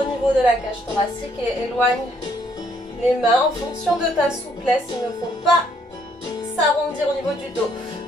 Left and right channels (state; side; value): normal; both; correlation 0.68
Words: niveau de la cage thoracique et éloigne les mains en fonction de ta souplesse. Il ne faut pas s'arrondir au niveau du dos.